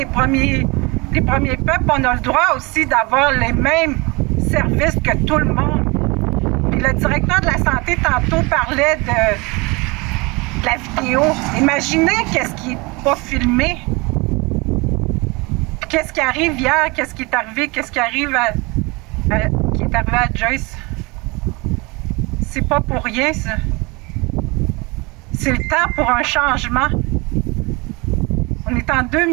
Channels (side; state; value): left; quieter; 26.3 dB